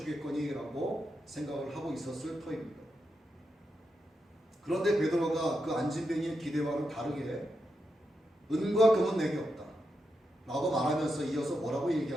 라고 생각을 하고 있었을 터입니다. 그런데 베드로가 그 안진뱅이의 기대와는 다르게 은과 금은 내게 없다 라고 말하면서 이어서 뭐라고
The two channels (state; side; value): normal; both; correlation 0.86